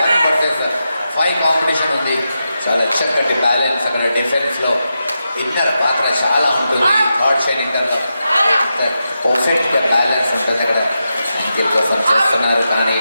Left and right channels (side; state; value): both; inverted; correlation -0.88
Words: వర్సెస్ 5 కాంపిటీషన్ ఉంది. చాలా చక్కటి బ్యాలెన్స్ అక్కడ డిఫెన్స్లో ఇన్నర్ పాత్ర చాలా ఉంటుంది. థర్డ్ షైన్ ఇంటర్లో పర్ఫెక్ట్గా బ్యాలెన్స్ ఉంటుంది. అక్కడ అంకిల్ కోసం చేస్తున్నారు కానీ